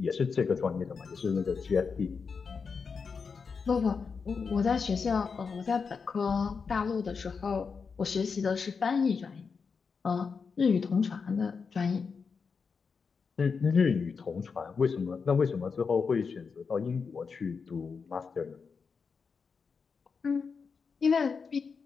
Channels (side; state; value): right; quieter; 5.4 dB